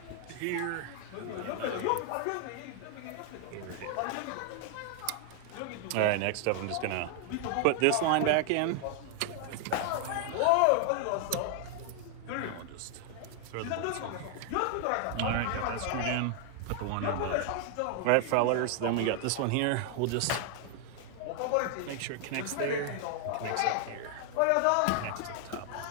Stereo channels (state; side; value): different; both; correlation 0.00